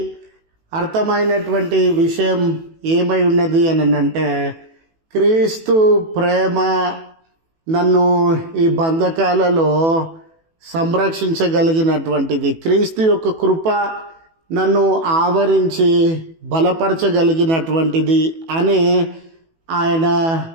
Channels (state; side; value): late; left; 18 ms